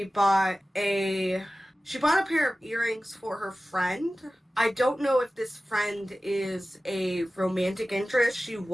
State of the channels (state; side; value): normal; both; correlation 0.96